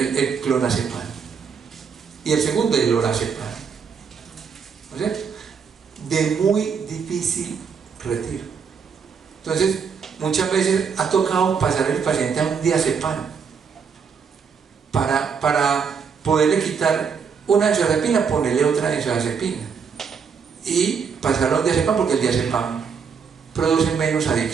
clonazepam. Y el segundo, el lorazepam. ¿No es cierto? De muy difícil retiro. Entonces, muchas veces ha tocado pasar el paciente a un diazepam para poderle quitar una benzodiazepina, ponerle otra benzodiazepina y pasarlo a un diazepam, porque el diazepam produce menos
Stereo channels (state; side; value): quieter; left; 6.3 dB